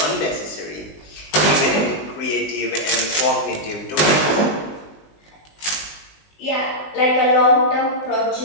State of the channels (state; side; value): late; right; 19 ms